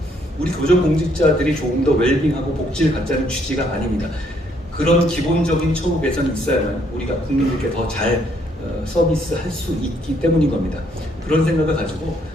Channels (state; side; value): normal; both; correlation 0.69